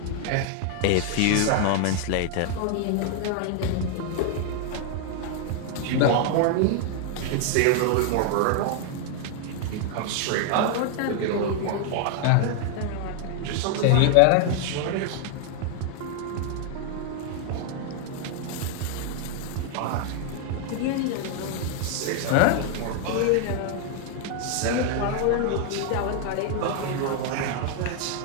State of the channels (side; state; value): both; different; correlation 0.00